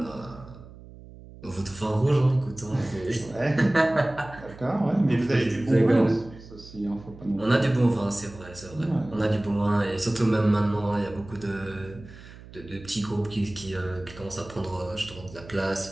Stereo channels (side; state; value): right; noise; hum, 18 dB below the sound